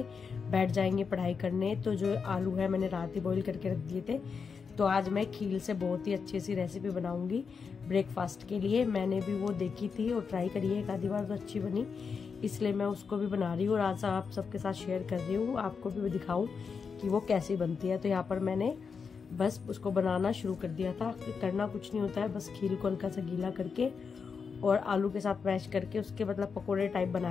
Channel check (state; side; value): quieter; right; 5.7 dB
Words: बैठ जाएंगे पढ़ाई करने। तो जो आलू है मैंने रात ही बॉईल करके रख दिए थे, तो आज मैं खील से बहुत ही अच्छी सी रेसिपी बनाऊंगी ब्रेकफास्ट के लिए। मैंने भी वो देखी थी और ट्राई करी है एक आधी बार, तो अच्छी बनी, इसलिए मैं उसको भी बना रही हूँ और आज आप सबके साथ शेयर कर रही हूँ, आपको भी दिखाऊं कि वो कैसी बनती है। तो यहाँ पर मैंने बस उसको बनाना शुरू कर दिया था। करना कुछ नहीं होता है, बस खील को हल्का सा गीला करके और आलू के साथ मैश करके उसके मतलब पकोड़े टाइप